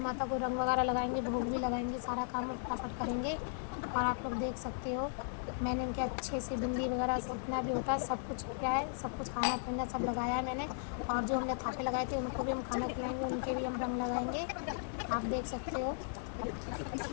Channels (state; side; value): silent; right; digital silence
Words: को रंग वगैरह लगाएंगे, भोग भी लगाएंगे, सारा काम फटाफट करेंगे। और आप लोग देख सकते हो मैंने इनके अच्छे से बिंदी वगैरह जितना भी होता है सब कुछ किया है, सब कुछ खाना पीना सब लगाया है मैंने। और जो हमने थापे लगाए थे उनको भी हम खाना खिलाएंगे, उनके भी हम रंग लगाएंगे, आप देख सकते हो।